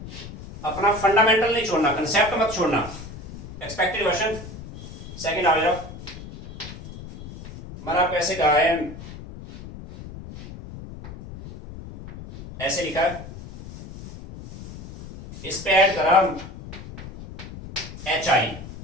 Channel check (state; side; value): noise; left; rumble, 13 dB below the sound